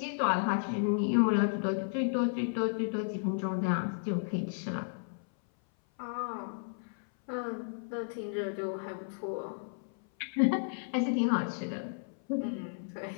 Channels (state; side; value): silent; right; 56 dB below the other